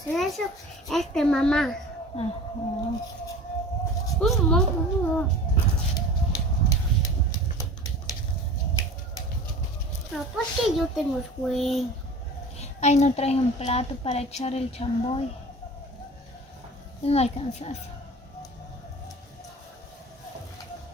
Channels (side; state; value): both; normal; correlation 0.40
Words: eso es de mamá. Ajá. No, porque yo tengo sueño. Ay, no traje un plato para echar el chamboy. No alcanzas.